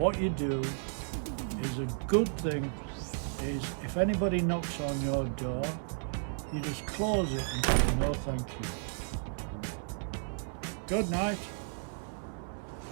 you do is a good thing is if anybody knocks on your door, you just close it and say no thank you. Good night.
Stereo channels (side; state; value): left; silent; 55 dB below the other